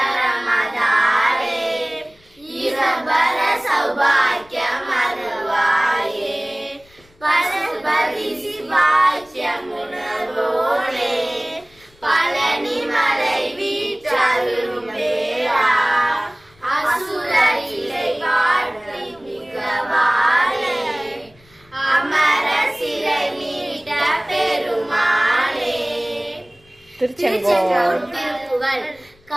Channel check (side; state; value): left; noise; rumble, 30 dB below the sound